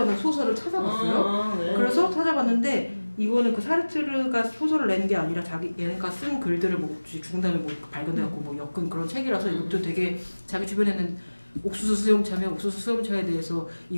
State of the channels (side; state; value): both; inverted; correlation -1.00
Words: 소설을 찾아봤어요. 그래서 찾아봤는데 이거는 그 사르트르가 소설을 낸 게 아니라 얘가 쓴 글들을 뭐 죽은 다음에 뭐 발견돼갖고 뭐 엮은 그런 책이라서 이것도 되게 자기 주변에는 옥수수 수염차면 옥수수 수염차에 대해서